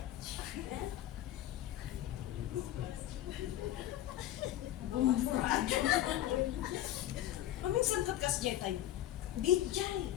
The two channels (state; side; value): quieter; right; 13.3 dB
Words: Bumburado. Paminsan kat kasjay tayo. Dijay.